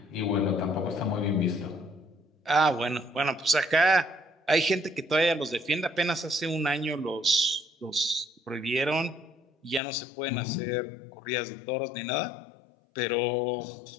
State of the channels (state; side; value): drops out; right; at 9.8 s